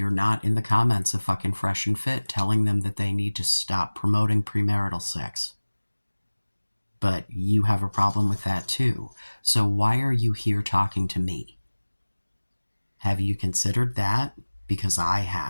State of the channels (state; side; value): inverted; both; correlation -1.00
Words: not in the comments of fucking Fresh and Fit telling them that they need to stop promoting premarital sex. But you have a problem with that too. So why are you here talking to me? Have you considered that? Because I